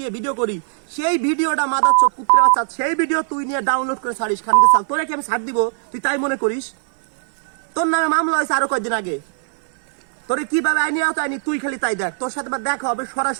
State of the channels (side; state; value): left; silent; 66 dB below the other